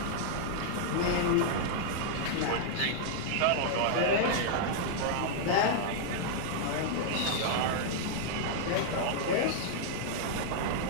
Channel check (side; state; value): both; different; correlation -0.01